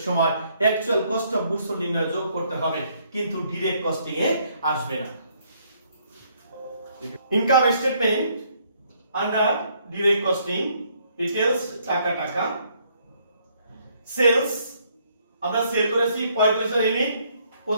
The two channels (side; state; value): both; inverted; correlation -0.68